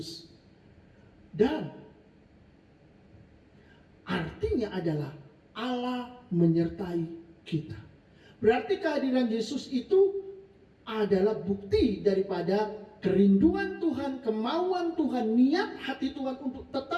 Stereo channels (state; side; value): identical; both; correlation 1.00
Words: Dan artinya adalah Allah menyertai kita. Berarti kehadiran Yesus itu adalah bukti daripada kerinduan Tuhan, kemauan Tuhan, niat hati Tuhan untuk